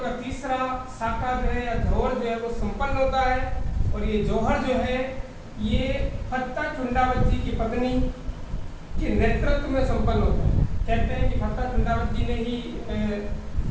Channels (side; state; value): both; identical; correlation 1.00